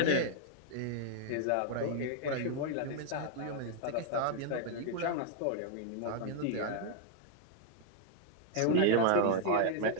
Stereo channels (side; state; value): both; different; correlation 0.00